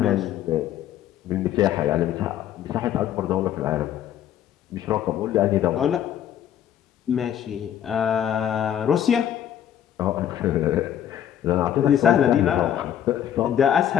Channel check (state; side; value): quieter; right; 10.4 dB